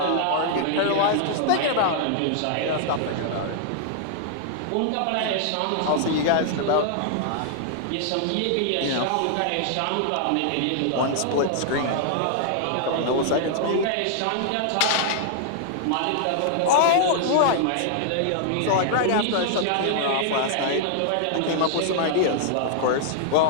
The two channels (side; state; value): both; different; correlation -0.01